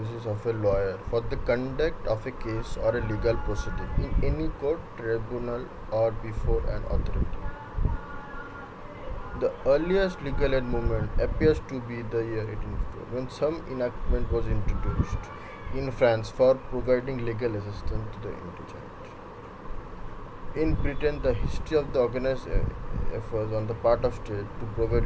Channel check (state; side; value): identical; both; correlation 1.00